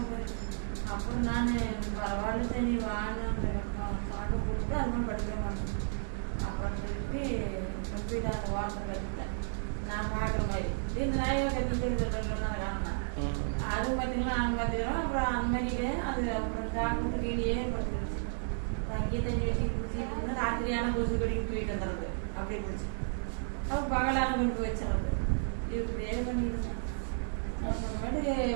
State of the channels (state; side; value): silent; left; digital silence